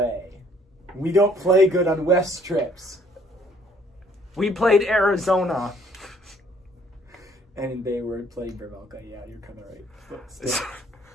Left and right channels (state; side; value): normal; both; correlation 0.62